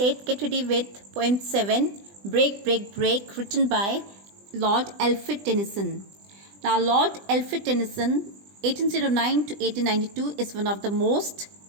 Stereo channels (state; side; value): late; left; 20 ms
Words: get ready with poem 7, Break, Break, Break, written by Lord Alfred Tennyson. Now, Lord Alfred Tennyson, 1809 to 1892, is one of the most